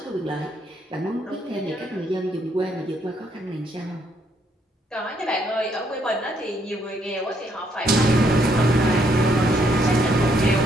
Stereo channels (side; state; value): both; normal; correlation 0.72